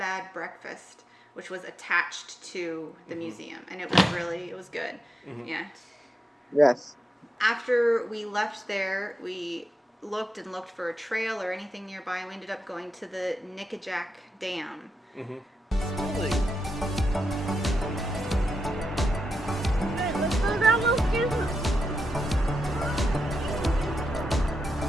Breakfast, which was attached to the museum, and it was good. Yeah. Yes. After we left there, we looked for a trail or anything nearby, and we ended up going to the Nickajack Dam. Really? Let's go down those stairs.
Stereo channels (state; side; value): normal; both; correlation 0.86